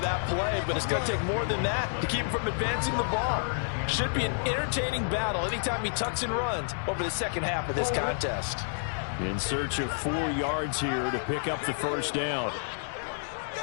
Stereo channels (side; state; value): right; silent; digital silence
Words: play, but it's going to take more than that to keep him from advancing the ball. Should be an entertaining battle anytime he tucks and runs over the second half of this contest. In search of 4 yards here to pick up the first down.